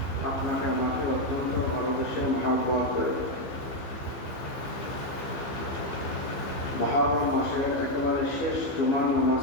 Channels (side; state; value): right; late; 15 ms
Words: আপনাকে আমাকে অত্যন্ত ভালোবেসে মহব্বত করে মুহররম মাসের একেবারে শেষ জুমার